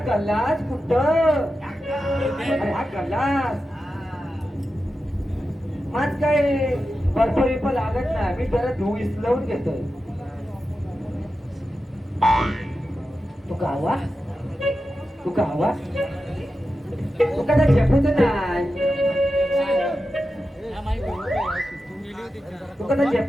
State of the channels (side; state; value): both; normal; correlation 0.91